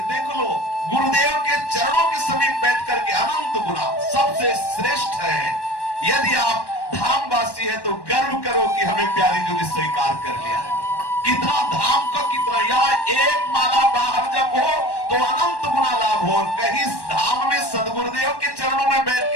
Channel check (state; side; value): late; right; 1.1 ms